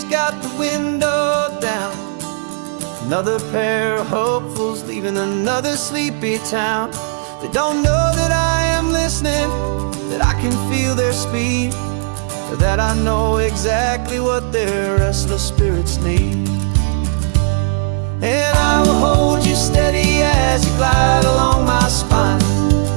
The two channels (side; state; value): left; silent; digital silence